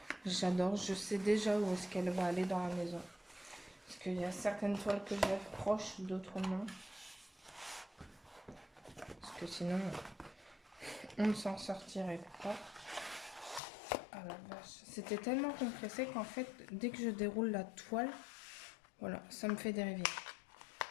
J'adore, je sais déjà où est-ce qu'elle va aller dans la maison. Parce qu'il y a certaines toiles que j'ai proches, d'autres non. Parce que sinon, on ne s'en sortirait pas. Ah la vache, c'était tellement compressé qu'en fait, dès que je déroule la toile, voilà, ça me fait des rivières.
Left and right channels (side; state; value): right; drops out; at 13.6 s